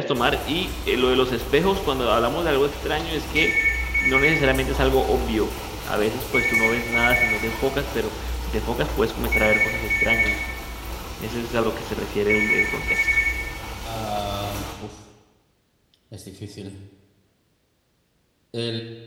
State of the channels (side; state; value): both; identical; correlation 1.00